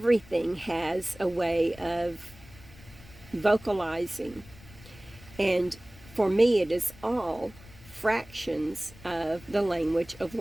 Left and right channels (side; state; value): left; noise; rumble, 21 dB below the sound